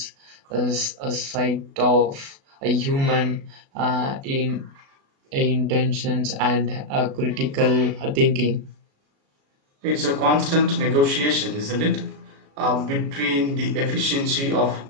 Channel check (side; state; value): left; late; 36 ms